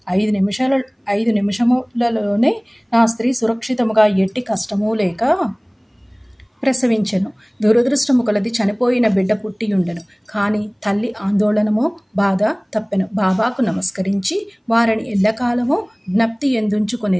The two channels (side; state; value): both; identical; correlation 1.00